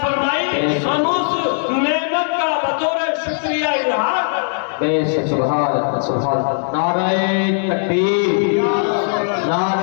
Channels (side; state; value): right; silent; digital silence